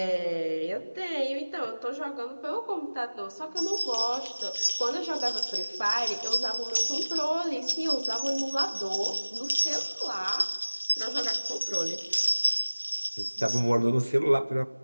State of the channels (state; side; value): inverted; both; correlation -1.00